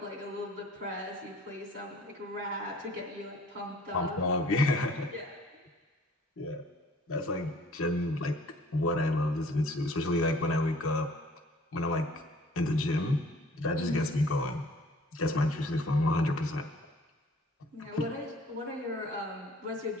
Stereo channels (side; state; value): both; normal; correlation 0.54